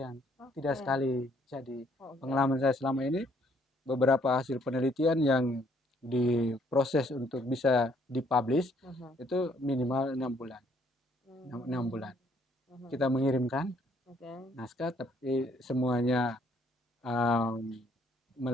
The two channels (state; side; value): normal; both; correlation 0.66